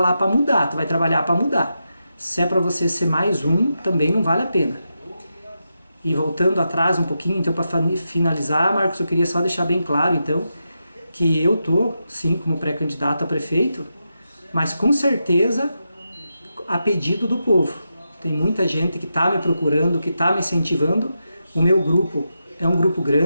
para mudar, tu vai trabalhar para mudar. Se é para você ser mais um, também não vale a pena. E voltando atrás um pouquinho, então, para finalizar, Marcos, eu queria só deixar bem claro, então, que eu tô, sim, como pré-candidato a prefeito, mas com certeza a pedido do povo. Tem muita gente que está me procurando, que está me incentivando. O meu grupo é um grupo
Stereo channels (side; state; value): both; inverted; correlation -0.87